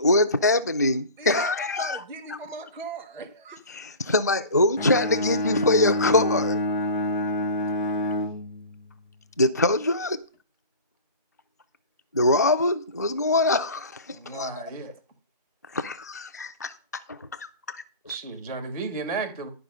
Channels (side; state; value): both; inverted; correlation -0.37